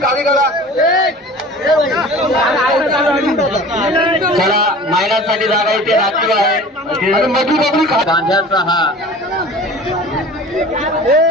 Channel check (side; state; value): both; normal; correlation 0.41